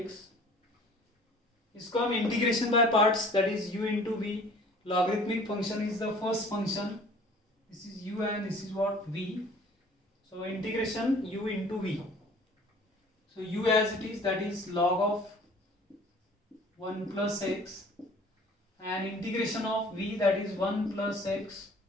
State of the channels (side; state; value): both; normal; correlation 0.50